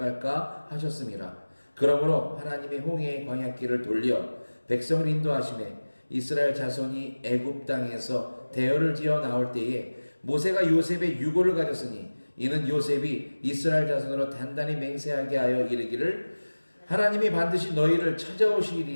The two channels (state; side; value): inverted; both; correlation -1.00